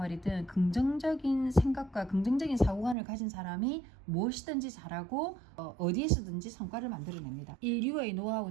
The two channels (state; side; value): drops out; left; at 3.0 s